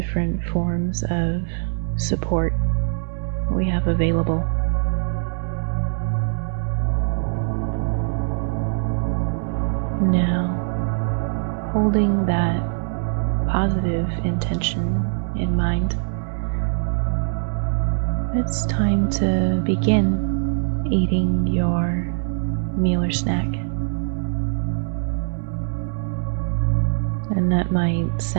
forms of support we have available. Now, holding that positive intention in mind, it's time to begin eating your meal or snack. And that might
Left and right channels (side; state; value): left; silent; 64 dB below the other